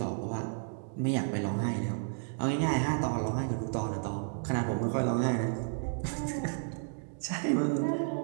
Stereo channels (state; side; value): silent; left; digital silence